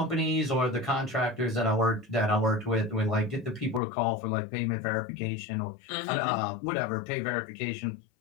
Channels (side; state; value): right; drops out; at 3.8 s